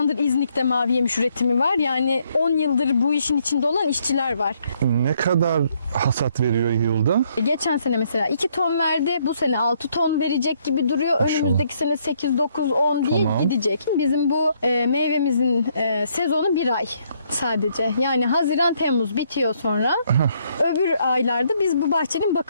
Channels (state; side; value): inverted; both; correlation -0.70